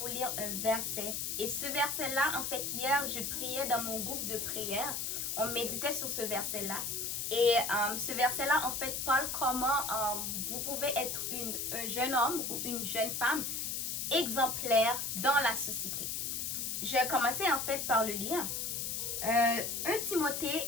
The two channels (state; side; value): noise; left; hiss, 2 dB below the sound